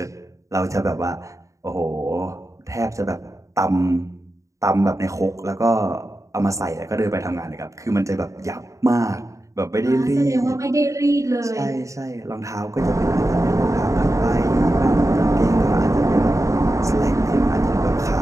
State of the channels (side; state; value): left; late; 0.15 ms